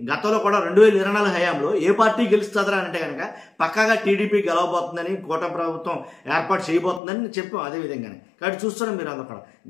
గతంలో కూడా 2024 హయాంలో ఏ పార్టీ గెలుస్తుందా అంటే కనుక పక్కాగా టీడీపీ గెలవబోతుందని, కూటమి ప్రభుత్వం ఏర్పాటు చేయబోతుందని చెప్పాం అదే విధంగానే. కాబట్టి చూస్తున్నాం మీరు అందరూ కూడా.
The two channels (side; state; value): right; drops out; at 7.0 s